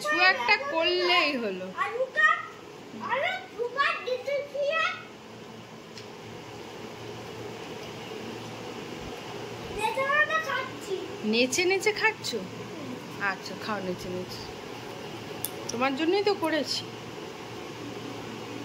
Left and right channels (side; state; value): both; identical; correlation 1.00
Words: একটা করলেই হলো। আলুটা আলু সুপার দিতে দিয়ে নেতাটা খাচ্ছি। নেচে নেচে খাচ্ছ? আচ্ছা খাও নেচে নেচে, তোমার জন্যই তো করেছি।